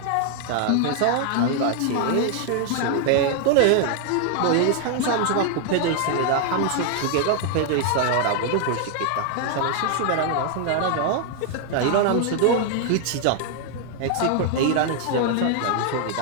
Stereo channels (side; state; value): both; different; correlation 0.00